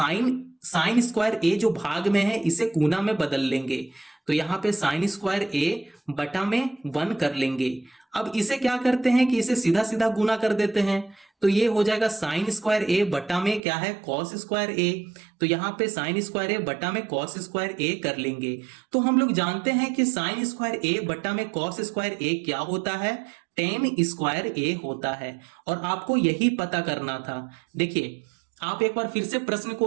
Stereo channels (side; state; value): left; drops out; at 13.6 s